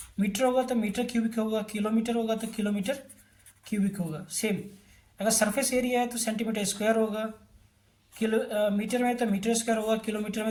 मीटर होगा तो मीटर क्यूबिक होगा, किलोमीटर होगा तो किलोमीटर क्यूबिक होगा। सेम अगर सरफेस एरिया है तो सेंटीमीटर स्क्वायर होगा, मीटर में तो मीटर स्क्वायर होगा, किलोमीटर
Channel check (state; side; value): identical; both; correlation 1.00